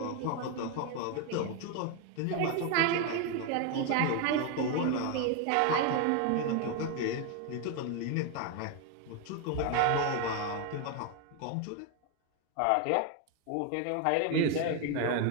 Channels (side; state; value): both; different; correlation 0.01